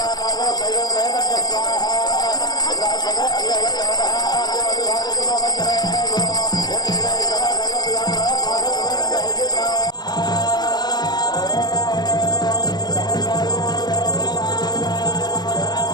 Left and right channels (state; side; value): late; right; 0.20 ms